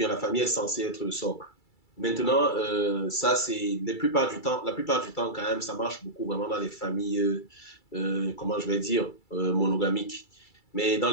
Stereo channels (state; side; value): late; right; 2.3 ms